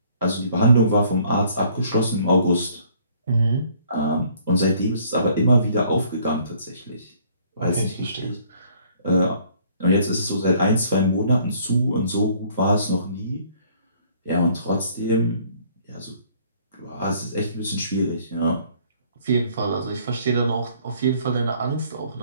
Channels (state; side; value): inverted; both; correlation -0.60